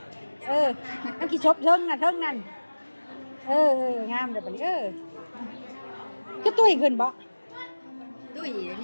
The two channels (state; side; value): inverted; both; correlation -1.00